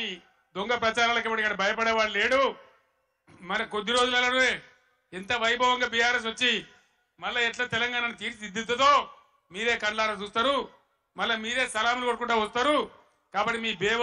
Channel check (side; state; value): both; identical; correlation 1.00